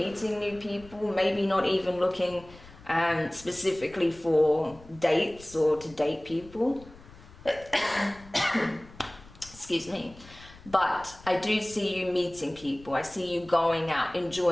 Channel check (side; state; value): left; noise; rumble, 21 dB below the sound